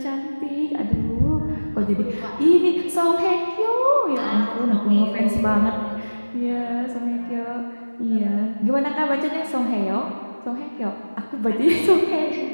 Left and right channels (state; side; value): inverted; both; correlation -1.00